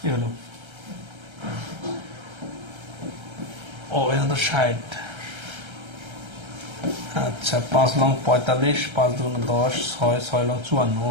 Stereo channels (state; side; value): late; left; 1.3 ms